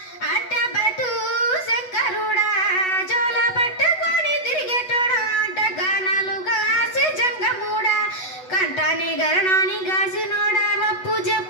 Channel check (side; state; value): right; late; 8.0 ms